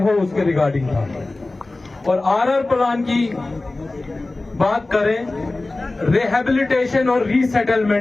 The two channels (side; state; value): right; quieter; 3.1 dB